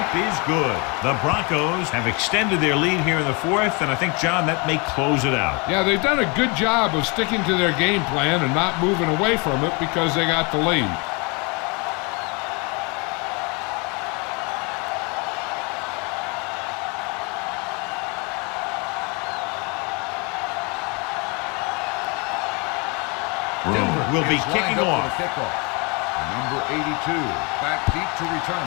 is good. The Broncos have extended their lead here in the 4th, and I think, John, that may close it out. Yeah, they've done a good job of sticking to their game plan and not moving away from it because they got the lead. Denver will be is kicking lined up off. for the kickoff. Number 82, back deep to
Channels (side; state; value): right; quieter; 30.7 dB